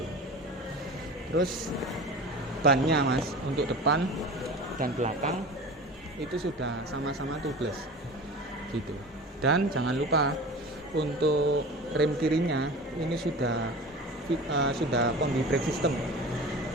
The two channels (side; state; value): both; normal; correlation 0.35